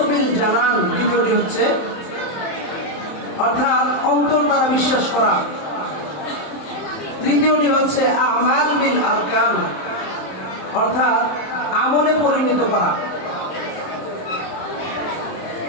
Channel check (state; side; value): late; right; 27 ms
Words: বিল জানান, দ্বিতীয়টি হচ্ছে অর্থাৎ অন্তর দ্বারা বিশ্বাস করা। তৃতীয়টি হচ্ছে আমাল বিল আরকান, অর্থাৎ আমলে পরিণত করা।